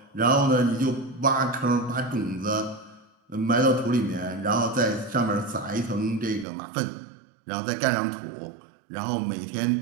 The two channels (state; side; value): drops out; left; at 6.5 s